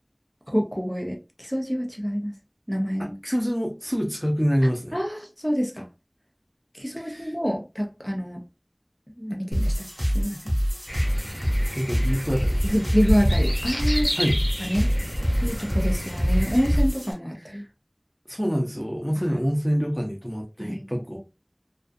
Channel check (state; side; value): identical; both; correlation 1.00